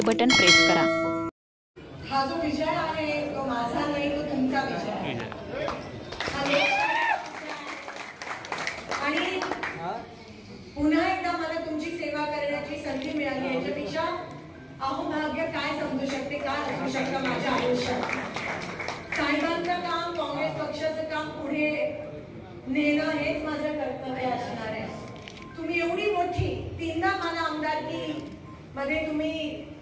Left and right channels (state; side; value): identical; both; correlation 1.00